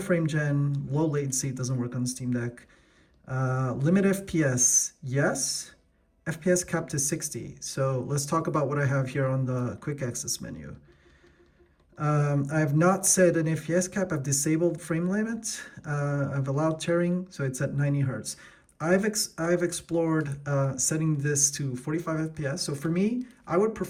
gen, low latency, it doesn't work on the Steam Deck. Limit FPS, yes. FPS capped to 60. So let's talk about what I have here on the quick access menu. I have not set an FPS cap, I've disabled frame limit. I've allowed tearing, so it's at 90 Hertz. I've explored setting this to 45 FPS. So for me, I would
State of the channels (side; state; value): both; identical; correlation 1.00